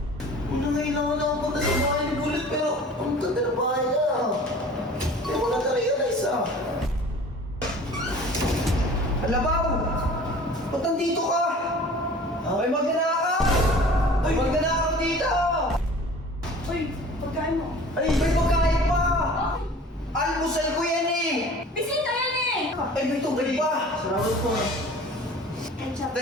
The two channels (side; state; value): both; normal; correlation 0.45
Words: Una ngayon lang ako punta sa bahay ni Bullet pero ang ganda ng bahay niya. Hindi mo na-realize ah. Alabaw! Ba't nandito ka? May magnanakaw! May magnanakaw dito! Uy, pagkain mo. Ay, may pagkain pa! Okay. Almusal ko yan eh! Bisita yan eh! Ay, may tubig pa! Salamat po. Ketchup.